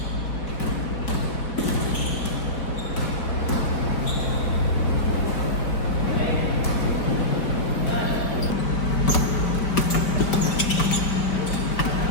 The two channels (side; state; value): right; late; 4.5 ms